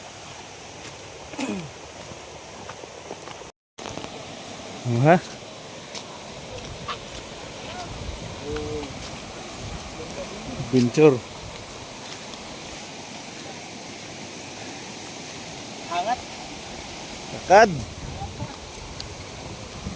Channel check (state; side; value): identical; both; correlation 1.00